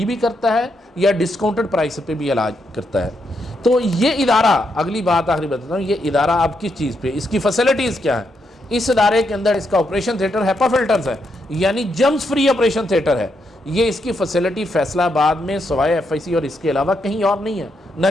بھی کرتا ہے یا ڈسکاؤنٹڈ پرائس پہ بھی علاج کرتا ہے۔ تو یہ ادارہ، اگلی بات آخری بتاتا ہوں، یہ ادارہ اب کس چیز پہ، اس کی فیسلٹیز کیا ہیں؟ اس ادارے کے اندر اس کا آپریشن تھیٹر ہیپا فلٹرز ہے، یعنی جرمز فری آپریشن تھیٹر ہے۔ یہ اس کی فیسلٹی فیصلہ آباد میں سوائے ایف آئی سی اور اس کے علاوہ کہیں اور نہیں ہے، نہ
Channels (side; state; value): both; normal; correlation 0.80